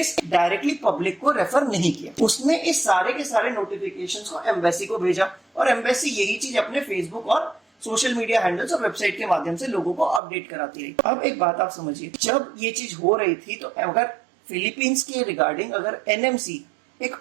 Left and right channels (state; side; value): drops out; left; at 10.2 s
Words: डायरेक्टली पब्लिक को रेफर नहीं किया। उसने इस सारे के सारे नोटिफिकेशंस को एम्बेसी को भेजा और एम्बेसी यही चीज अपने फेसबुक और सोशल मीडिया हैंडल्स और वेबसाइट के माध्यम से लोगों को अपडेट कराती रही। अब एक बात आप समझिए, जब ये चीज हो रही थी तो अगर फिलीपींस के रिगार्डिंग अगर एनएमसी एक